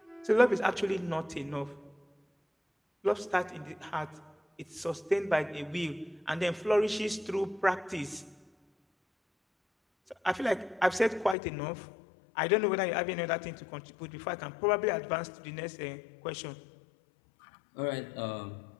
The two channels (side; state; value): right; drops out; at 11.4 s